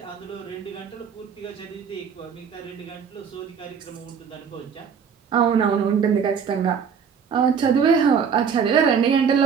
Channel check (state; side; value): quieter; left; 6.8 dB